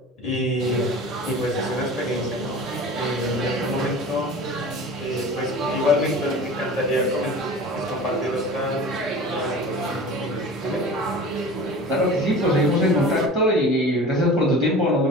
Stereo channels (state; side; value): normal; both; correlation 0.38